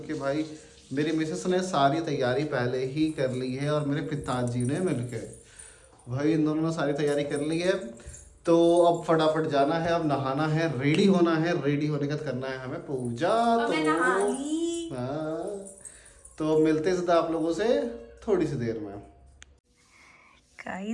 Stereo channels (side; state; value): both; identical; correlation 1.00